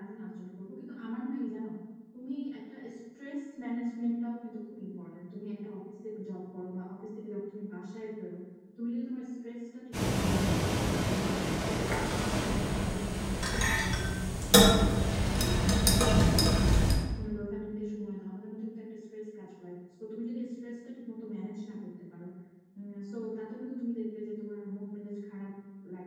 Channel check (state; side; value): identical; both; correlation 1.00